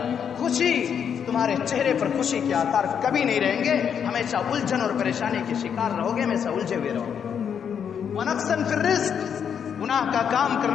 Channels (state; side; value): quieter; right; 7.8 dB